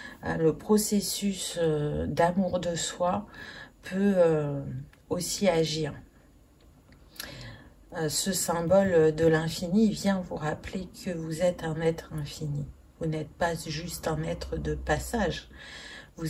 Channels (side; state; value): both; identical; correlation 1.00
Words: le processus d'amour de soi peut aussi agir. Ce symbole de l'infini vient vous rappeler que vous êtes un être infini. Vous n'êtes pas juste un être de passage.